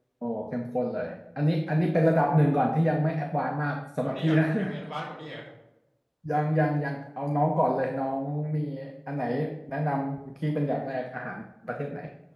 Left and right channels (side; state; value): both; identical; correlation 1.00